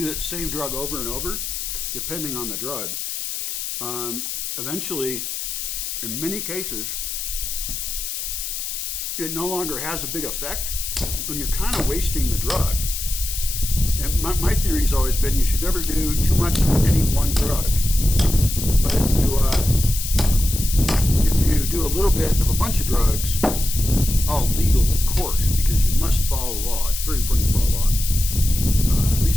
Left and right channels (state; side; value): noise; left; hiss, 5 dB below the sound